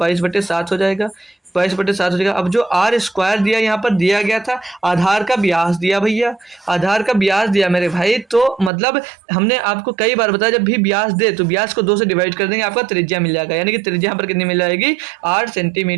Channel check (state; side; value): drops out; left; at 8.7 s